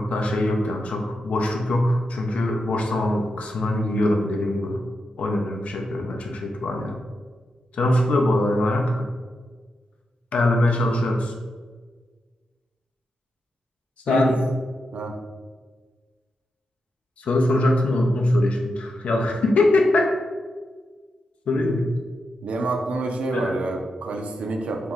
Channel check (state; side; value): normal; both; correlation 0.86